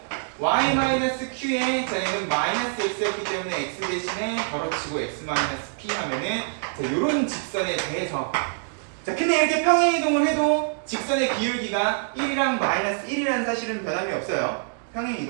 Y-Q에 자 얘는 마이너스 X였기 때문에 X 대신에 덜어치고 X-P 하면은 자, 요런 직선에 대해서 자, 근데 이렇게 평행이동을 해도 직선의 기울기가 1이랑 마이너스 1이라는 사실은 변함이 없어요.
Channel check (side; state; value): left; silent; digital silence